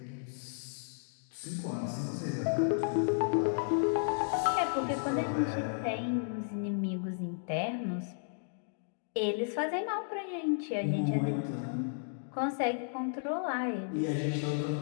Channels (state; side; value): silent; right; digital silence